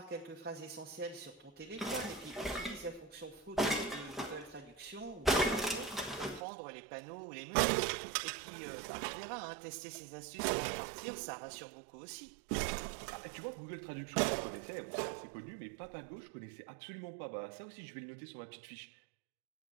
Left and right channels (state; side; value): drops out; left; at 6.5 s